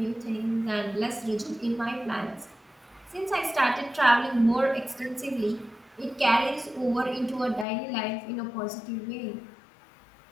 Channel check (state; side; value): drops out; right; at 7.7 s